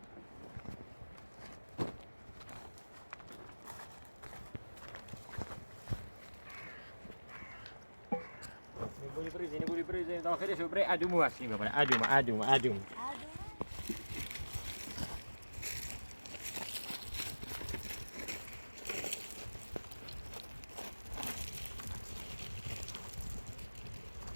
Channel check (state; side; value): inverted; both; correlation -1.00